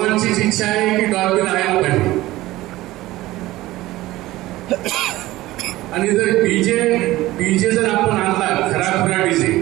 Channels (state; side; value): quieter; left; 17.3 dB